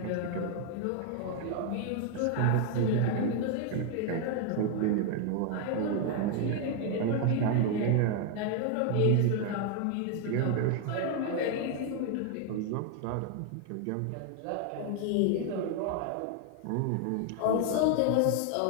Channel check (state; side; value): different; both; correlation 0.01